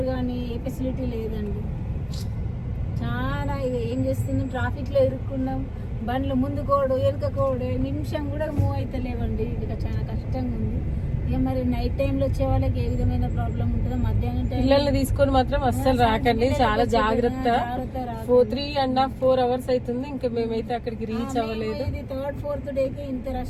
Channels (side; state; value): both; identical; correlation 1.00